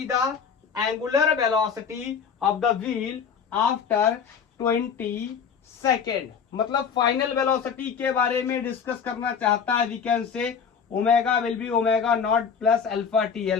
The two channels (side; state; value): right; quieter; 6.7 dB